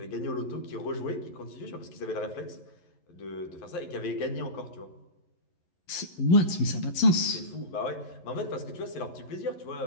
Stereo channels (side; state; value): right; late; 11 ms